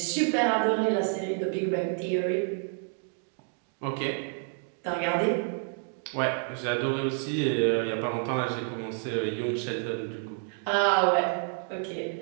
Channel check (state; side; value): silent; left; 59 dB below the other